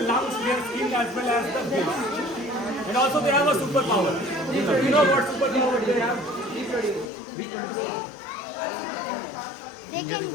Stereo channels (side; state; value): right; drops out; at 7.1 s